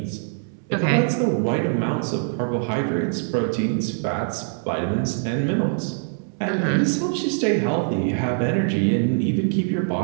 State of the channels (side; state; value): left; silent; 63 dB below the other